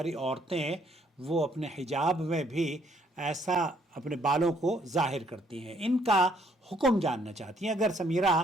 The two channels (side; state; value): both; normal; correlation 0.67